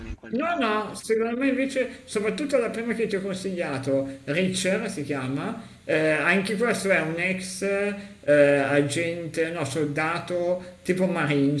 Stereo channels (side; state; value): both; identical; correlation 1.00